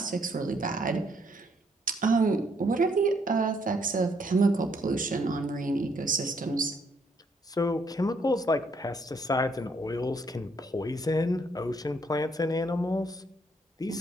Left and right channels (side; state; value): both; normal; correlation 0.70